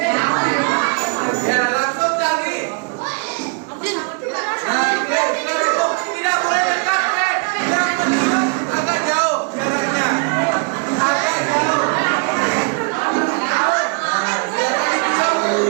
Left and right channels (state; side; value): quieter; left; 37.3 dB